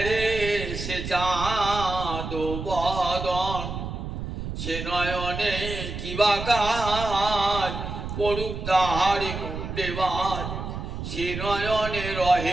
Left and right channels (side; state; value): right; noise; rumble, 6 dB below the sound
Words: সে চাঁদ বদন, সে নয়নে কিবা কাজ পড়ুক তাহার মুন্ডে বাজ, সে নয়নে